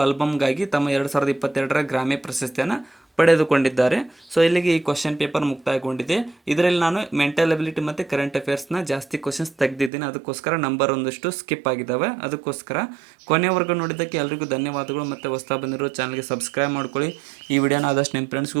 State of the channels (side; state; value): left; drops out; at 9.9 s